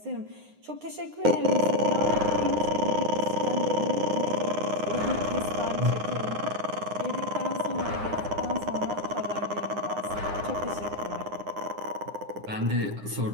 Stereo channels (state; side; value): late; left; 9.7 ms